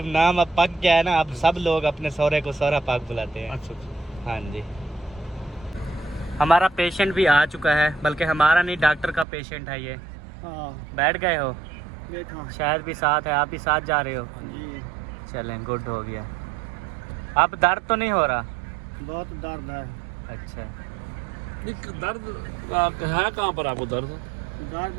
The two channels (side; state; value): left; drops out; at 9.2 s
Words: नाम अब पक गया है ना, अब सब लोग अपने सौरे को सौरा पाक बुलाते हैं। अच्छा अच्छा। हाँ जी हमारा पेशेंट भी आ चुका है, बल्कि हमारा नहीं डॉक्टर का पेशेंट है ये। बैठ गए हो? बैठो शायद भी साथ है, आप भी साथ जा रहे हो? जी। चलें गुड हो गया। अब दर्द तो नहीं हो रहा? बहुत दर्द है। अच्छा दर्द है कहाँ पर आपको दर्द?